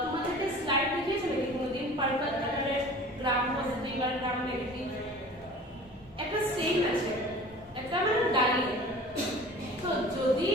স্লাইড দেখিয়েছিল কি কোনোদিন? পার্পল কালারের গ্রাম পজিটিভ আর গ্রাম নেগেটিভ একটা স্টেইন আছে, একটা মানে দাঁড়িয়ে। তো যদি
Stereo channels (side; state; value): both; normal; correlation 0.42